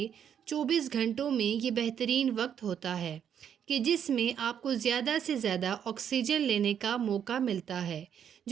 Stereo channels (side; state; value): left; quieter; 8.7 dB